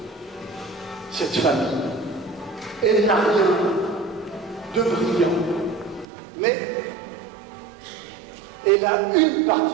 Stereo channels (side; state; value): left; drops out; at 6.1 s